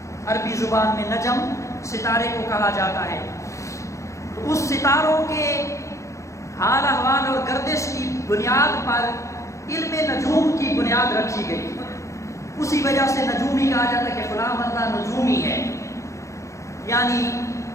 عربی زبان میں نجم ستارے کو کہا جاتا ہے۔ تو اس ستاروں کے حال احوال اور گردش کی بنیاد پر علم نجوم کی بنیاد رکھی گئی۔ اسی وجہ سے نجومی کہا جاتا ہے کہ فلاں بندہ نجومی ہے، یعنی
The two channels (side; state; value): right; late; 0.15 ms